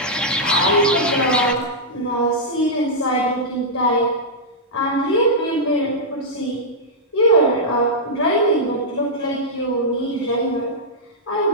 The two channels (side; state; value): both; normal; correlation -0.09